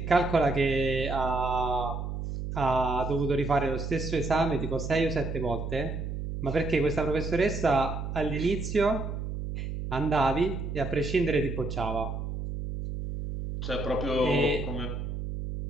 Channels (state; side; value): noise; right; hum, 5 dB below the sound